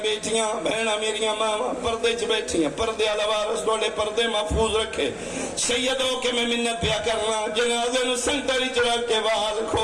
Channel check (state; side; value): identical; both; correlation 1.00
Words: بہناں میریاں ماما پردے چ بیٹھیاں پردے والا وارث ڈولے پردے محفوظ رکھے سید ہو کے میں منت پیا کرنا جنازے نو سنٹر وچ رکھ کے وال